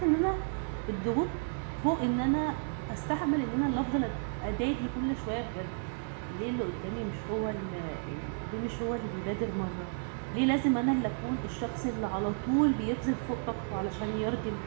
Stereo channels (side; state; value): left; silent; 56 dB below the other